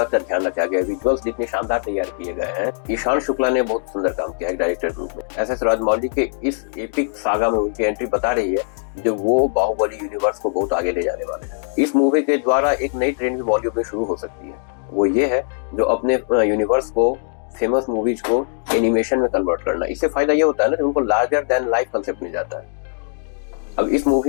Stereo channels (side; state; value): right; silent; digital silence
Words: का ध्यान रखा गया। विजुअल्स जितने शानदार तैयार किए गए हैं। ईशान शुक्ला ने बहुत सुंदर काम किया है डायरेक्टर के रूप में। एस एस राजमौली के इस एपिक सागा में उनकी एंट्री बता रही है, जो वो बाहुबली यूनिवर्स को बहुत आगे ले जाने वाले हैं। इस मूवी के द्वारा एक नई ट्रेंड भी बॉलीवुड में शुरू हो सकती है। वो ये है, जो अपने यूनिवर्स को, फेमस मूवीज को एनिमेशन में कन्वर्ट करना। इससे फायदा ये होता है ना कि उनको लार्जर देन लाइफ कंसेप्ट मिल जाता है। अब इस